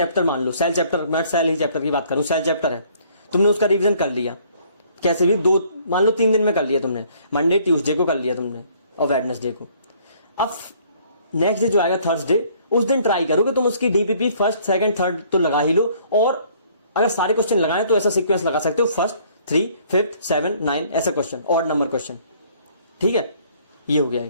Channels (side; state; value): both; inverted; correlation -0.60